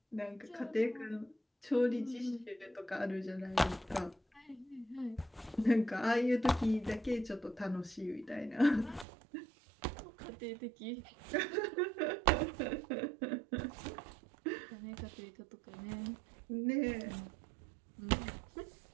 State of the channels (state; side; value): drops out; left; at 9.1 s